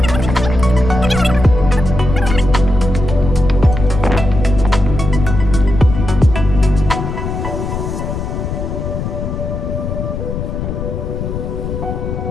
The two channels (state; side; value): noise; left; rumble, 4 dB below the sound